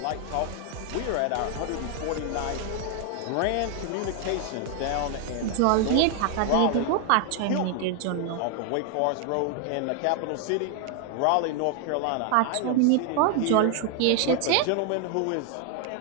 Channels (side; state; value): both; different; correlation 0.00